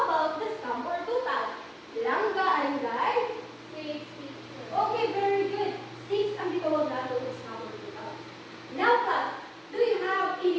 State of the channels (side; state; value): both; identical; correlation 1.00